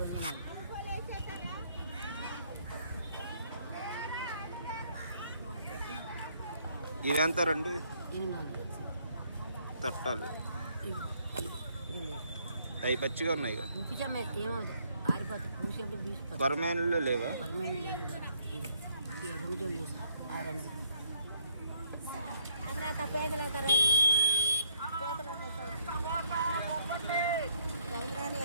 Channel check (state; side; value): inverted; both; correlation -0.68